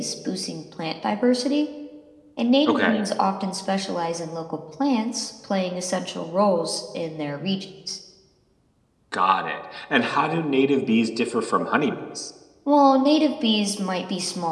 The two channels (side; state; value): both; identical; correlation 1.00